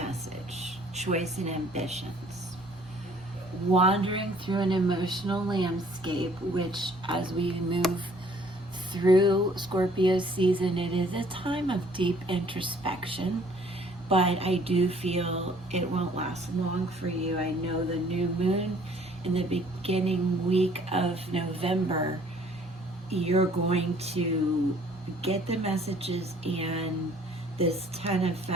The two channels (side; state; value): both; normal; correlation 0.58